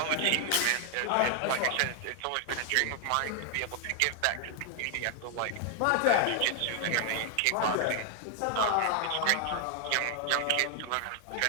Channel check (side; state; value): both; different; correlation 0.00